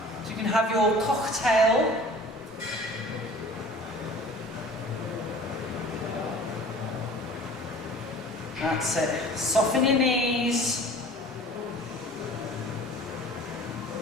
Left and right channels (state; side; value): normal; both; correlation 0.45